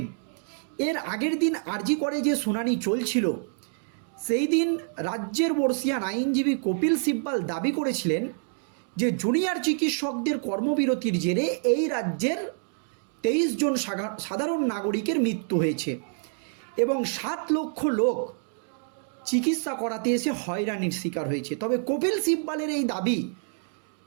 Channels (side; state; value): left; silent; 60 dB below the other